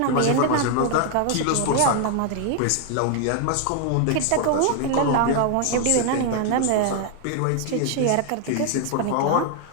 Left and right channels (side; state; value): both; different; correlation 0.00